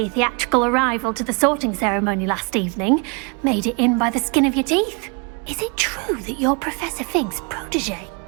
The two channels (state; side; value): quieter; left; 33.3 dB